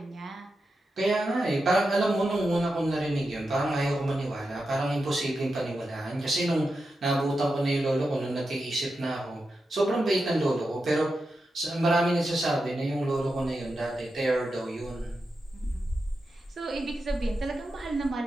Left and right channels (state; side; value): normal; both; correlation 0.89